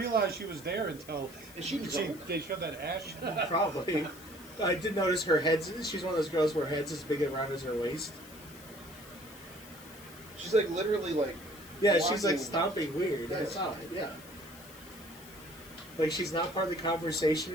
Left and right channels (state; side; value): noise; left; hiss, 19 dB below the sound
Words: she was there until Is she drunk? they showed that ash. Probably. I did notice her head's... She's one of those girls where her head's as big around as her waist. She's like literally like... Yeah, she's like walking- stomping weird. I Yes. saw it, yeah. Like she's not part of the conversation,